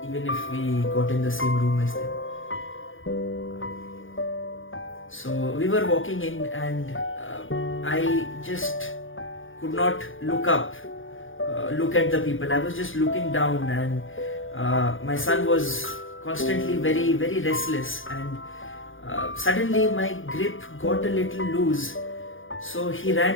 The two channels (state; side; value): late; right; 0.58 ms